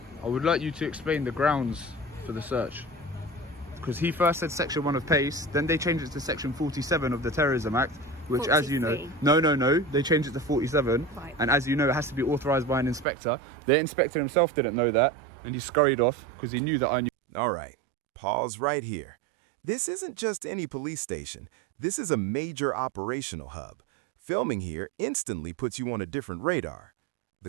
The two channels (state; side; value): drops out; left; at 13.1 s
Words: I would like you to explain the grounds for the search. Because he first said section 1 of PACE, then they changed it to section 47 of the Terrorism Act, which 43. as you know, no, they changed it to 47. Right. And as you know, it has to be authorised by an inspector. The inspector himself didn't know that, and he scurried off because he knew that I knew. All right, pause right here. This isn't just any police station. This is a major operational hub. Filming here instantly puts you on a different radar.